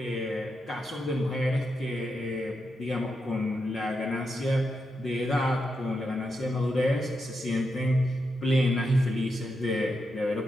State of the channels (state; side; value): normal; both; correlation 0.85